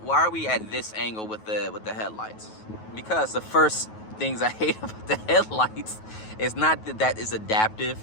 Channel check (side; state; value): right; late; 9.3 ms